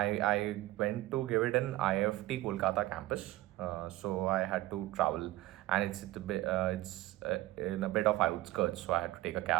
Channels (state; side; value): quieter; left; 17.0 dB